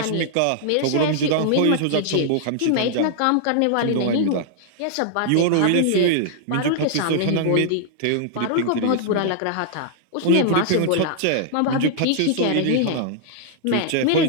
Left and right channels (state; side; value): different; both; correlation -0.01